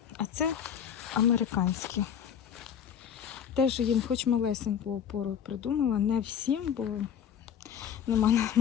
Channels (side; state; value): right; quieter; 8.5 dB